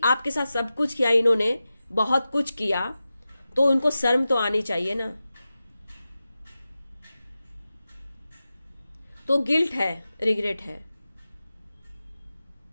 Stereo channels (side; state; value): both; inverted; correlation -0.93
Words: आपके साथ सब कुछ किया इन्होंने, बहुत कुछ किया, तो उनको शर्म तो आनी चाहिए ना। तो गिल्ट है, रिग्रेट है।